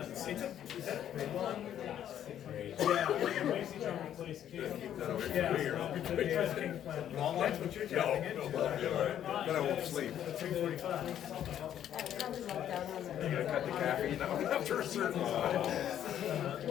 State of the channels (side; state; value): right; quieter; 10.5 dB